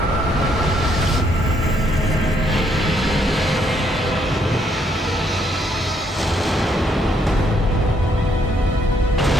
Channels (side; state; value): both; normal; correlation 0.71